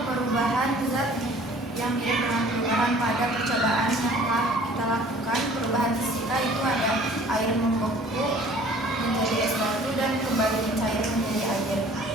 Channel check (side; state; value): both; normal; correlation 0.51